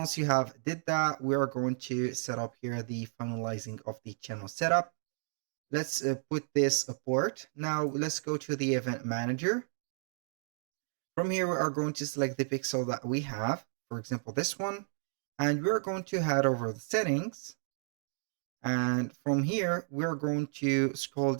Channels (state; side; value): silent; left; digital silence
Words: you have did that, we are going to set up here the finalizing of the channel setup. Let's put this port. Now let's go to the event manager. From here, we are going to select the pixel that we have, for example, this one, and we're going to head over the settings. And from here, we're going to scroll